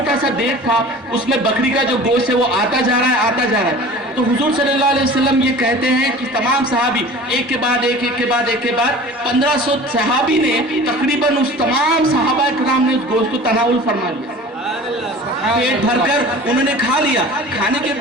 سا دیگ تھا اس میں بکری کا جو گوشت ہے وہ آتا جا رہا ہے, آتا جا رہا ہے. تو حضور صلی اللہ علیہ وسلم یہ کہتے ہیں کہ تمام صحابی ایک کے بعد ایک, ایک کے بعد ایک کے بعد 1500 صحابی نے تقریباً اس تمام صحابہ کرام نے اس گوشت کو تناول فرما لیا, پیٹ بھر کر انہوں نے کھا لیا. کھانے کے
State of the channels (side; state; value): both; normal; correlation 0.41